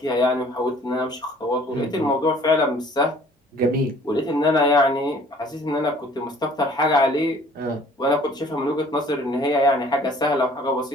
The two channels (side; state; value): both; normal; correlation 0.54